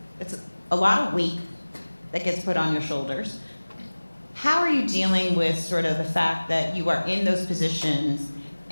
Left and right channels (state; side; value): inverted; both; correlation -1.00